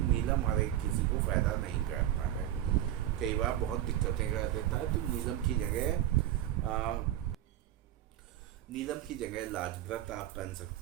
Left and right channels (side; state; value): left; quieter; 12.5 dB